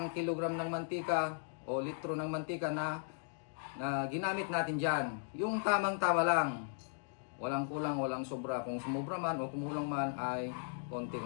kilogram ng mantika o litro ng mantika na ginamit natin dyan. Yung tamang-tama lang, walang kulang, walang sobra. Kung sumobra man o kumulang man ay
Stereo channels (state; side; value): silent; right; digital silence